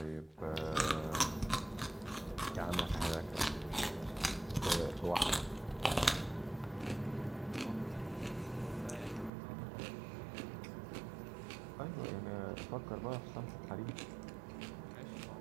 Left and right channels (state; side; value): drops out; left; at 9.3 s